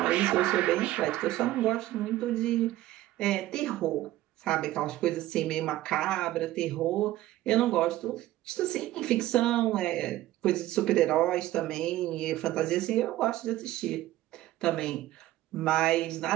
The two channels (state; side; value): quieter; left; 15.4 dB